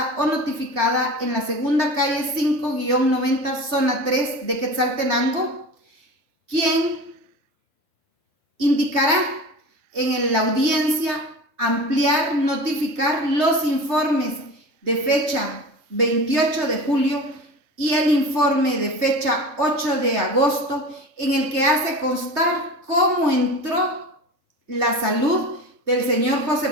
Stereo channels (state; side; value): late; left; 3.5 ms